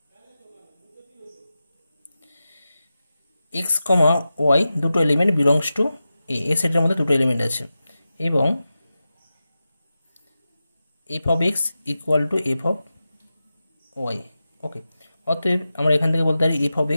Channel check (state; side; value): inverted; both; correlation -0.93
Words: এক্স কমা ওয়াই দুটো এলিমেন্ট বিলংস টু এ সেটের মধ্যে দুটো এলিমেন্ট আছে এবং f of x equal to f of y. Okay, অতএব আমরা এখান থেকে বলতে পারি f of